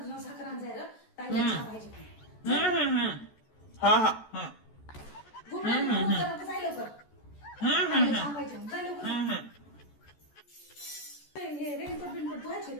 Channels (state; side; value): late; right; 14 ms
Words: जाऊन साखर आण जाय रे. ताईला चहा पाहिजे. हा हा हा घुमला जाय लवकर. ताईला चहा पाहिजे. जाय लवकर. हे रेनकोट बिनकोट धुवायचे